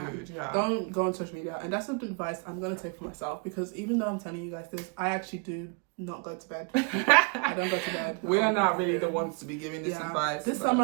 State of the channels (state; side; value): quieter; left; 33.6 dB